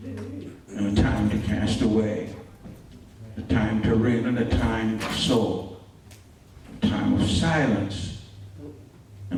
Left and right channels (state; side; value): identical; both; correlation 1.00